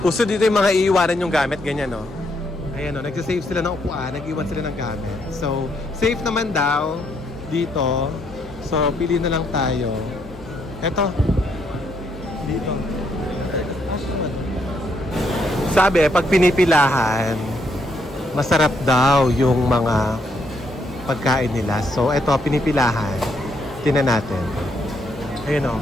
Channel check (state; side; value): normal; both; correlation 0.74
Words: Uso dito yung mga iiwanan yung gamit, ganyan, no. Ayan, no, nag-save sila ng upuan, nag-iwan sila ng gamit. So, safe naman daw dito. So, pili na lang tayo. Eto. Dito. Sabi, pag pinipilahan, masarap daw yung mga pagkain nila. So, ito, pinipilahan. Tingnan natin. Ayun o.